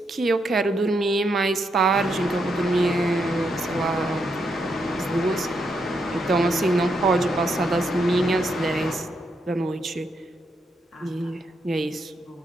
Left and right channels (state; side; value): normal; both; correlation 0.80